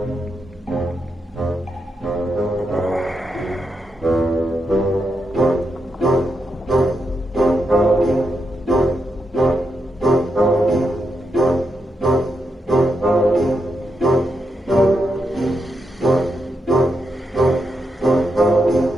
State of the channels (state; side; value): normal; both; correlation 0.84